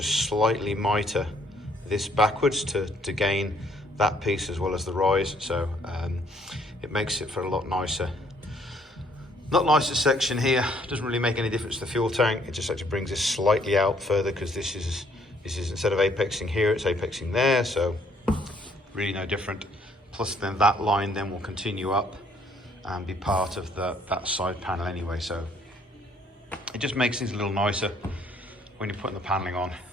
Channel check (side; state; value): both; normal; correlation 0.64